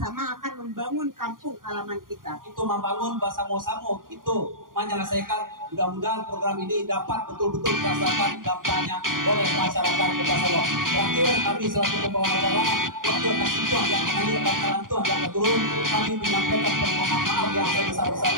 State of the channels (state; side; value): late; left; 0.90 ms